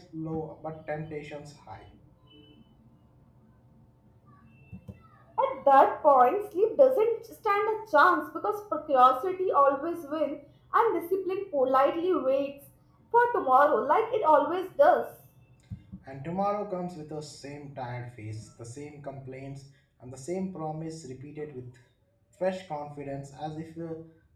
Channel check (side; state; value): both; identical; correlation 1.00